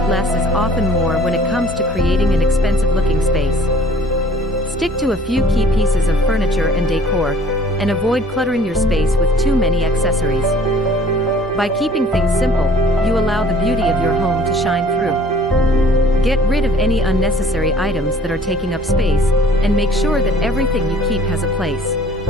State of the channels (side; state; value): both; normal; correlation 0.54